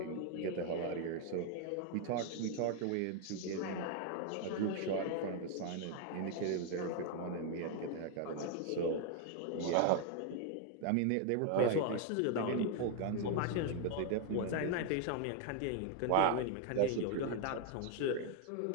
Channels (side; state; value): both; different; correlation 0.01